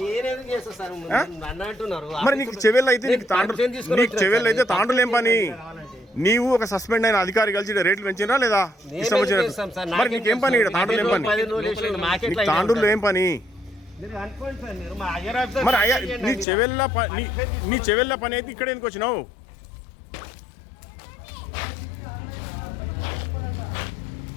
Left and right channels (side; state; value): right; drops out; at 16.4 s